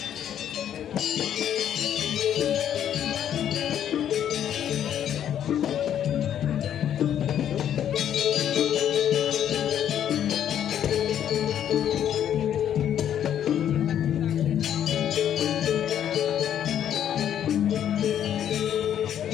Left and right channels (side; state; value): right; quieter; 10.0 dB